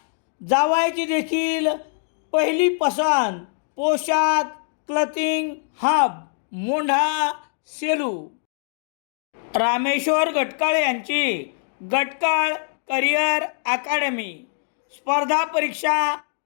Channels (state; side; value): silent; right; 63 dB below the other